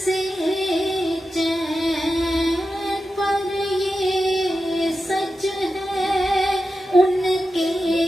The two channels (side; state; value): both; normal; correlation 0.91